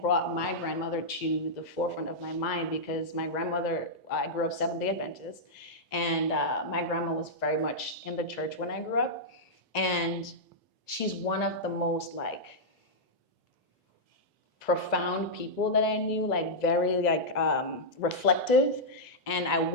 brought my grandmother to the forefront of my mind, because my grandmother, I grew up Seventh-day Adventist, and my grandma was very much in the church when I grew up. And she's one of the most like profound people that I knew, like very like reflective. And I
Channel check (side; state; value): both; normal; correlation -0.09